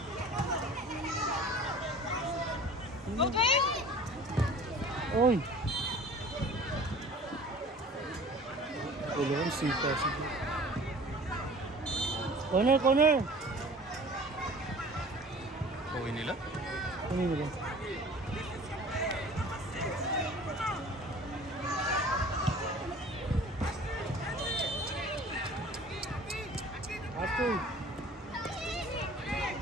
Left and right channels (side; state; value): both; normal; correlation 0.45